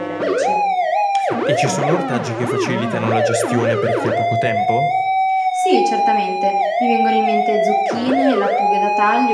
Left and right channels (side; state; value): both; identical; correlation 1.00